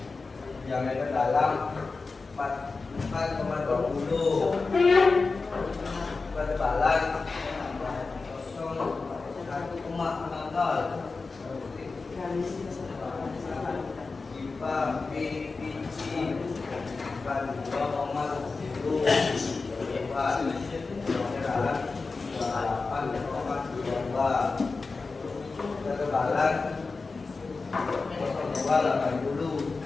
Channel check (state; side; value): quieter; right; 4.1 dB